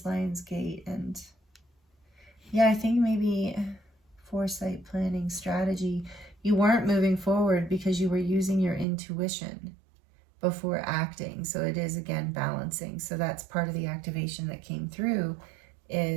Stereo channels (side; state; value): left; drops out; at 8.8 s